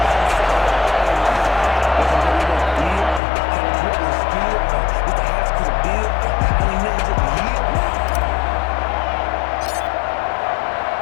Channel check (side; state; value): right; drops out; at 3.2 s